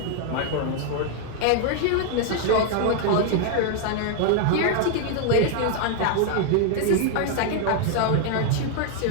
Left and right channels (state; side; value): different; both; correlation 0.00